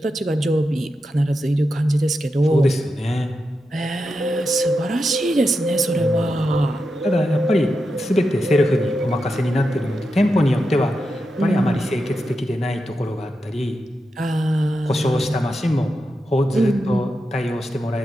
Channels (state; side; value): normal; both; correlation 0.88